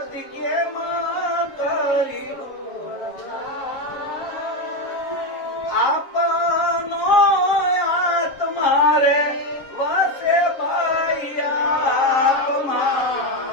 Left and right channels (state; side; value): late; right; 7.3 ms